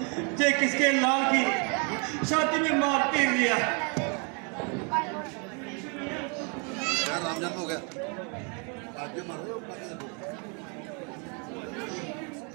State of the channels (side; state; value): left; quieter; 35.8 dB